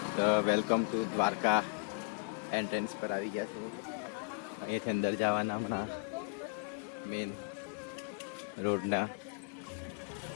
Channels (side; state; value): right; quieter; 35.5 dB